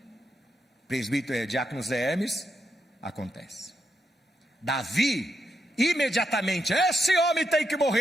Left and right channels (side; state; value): both; normal; correlation 0.83